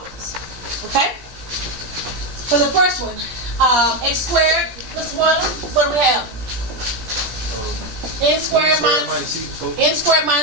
Okay? For the first one, x squared, Mr. Boylan, what do we have? N squared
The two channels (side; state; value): left; late; 17 ms